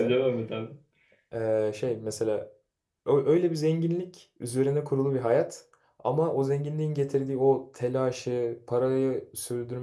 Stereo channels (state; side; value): identical; both; correlation 1.00